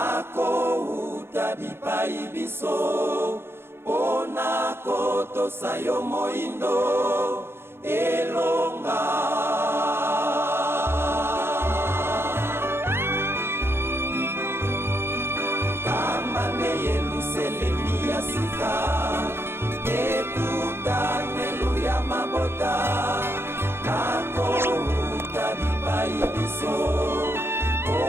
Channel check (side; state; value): left; late; 0.11 ms